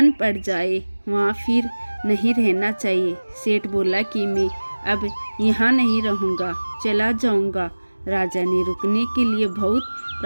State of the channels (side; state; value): both; inverted; correlation -1.00